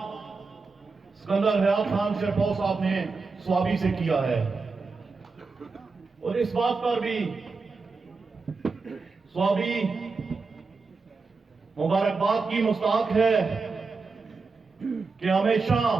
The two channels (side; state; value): left; quieter; 4.3 dB